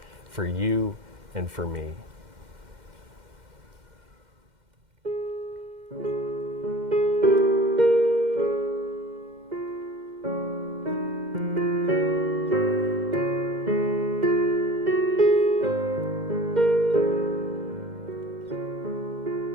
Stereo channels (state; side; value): late; left; 2.1 ms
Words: for you and for me.